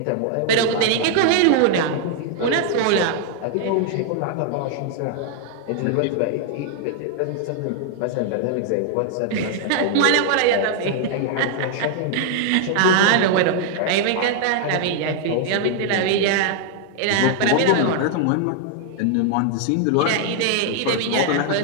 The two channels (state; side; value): different; both; correlation 0.00